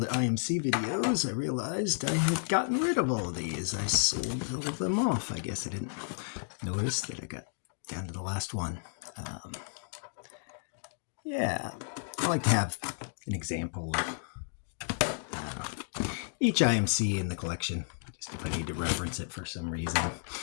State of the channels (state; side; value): silent; right; digital silence